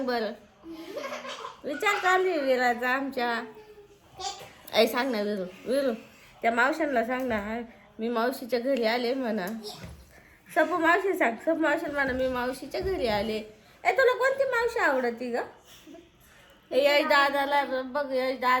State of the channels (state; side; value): identical; both; correlation 1.00